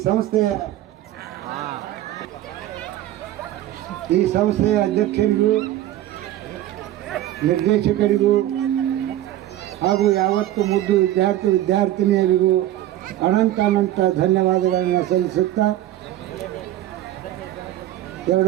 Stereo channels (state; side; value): quieter; left; 13.7 dB